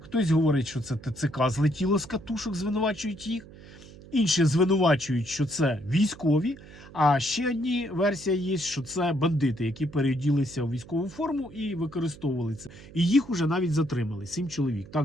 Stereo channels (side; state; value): right; noise; hum, 19 dB below the sound